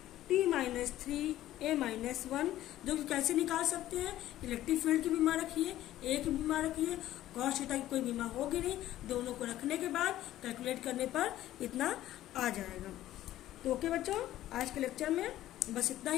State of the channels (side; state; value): right; quieter; 13.9 dB